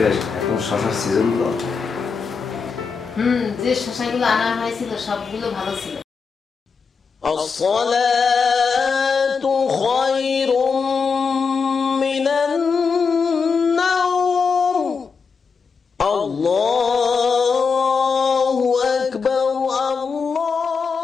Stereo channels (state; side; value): quieter; right; 5.4 dB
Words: এখন শশার সিজন তো। যে শশাগুলো আনা হয়েছিল সবগুলো ভালো ছিল। আসসালাতু খায়রুম মিনান নাওম। আল্লাহু আকবার,